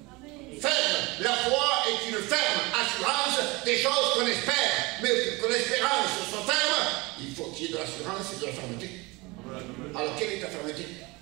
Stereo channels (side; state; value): left; quieter; 24.6 dB